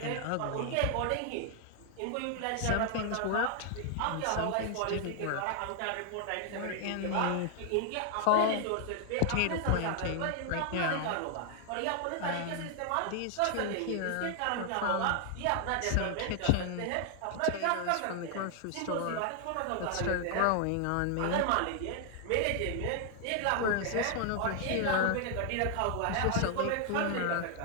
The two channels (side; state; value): both; different; correlation 0.00